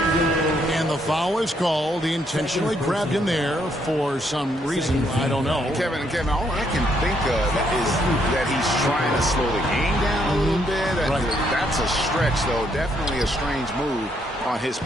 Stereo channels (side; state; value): both; normal; correlation 0.73